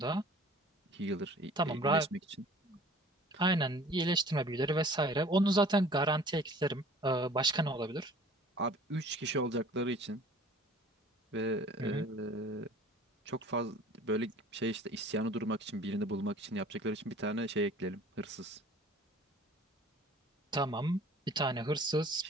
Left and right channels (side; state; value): both; normal; correlation 0.49